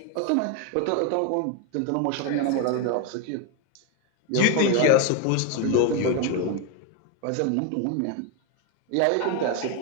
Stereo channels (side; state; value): both; different; correlation 0.02